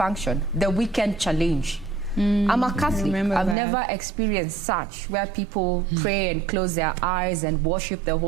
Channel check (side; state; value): left; drops out; at 3.6 s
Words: the weekend challenge. I'm a Catholic. I've never experienced such, where people pray and close their eyes and worship the